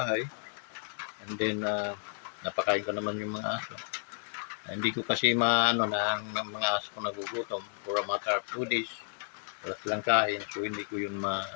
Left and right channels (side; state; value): right; silent; 56 dB below the other